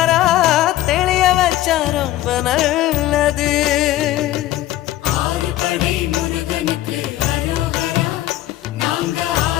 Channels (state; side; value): quieter; right; 14.8 dB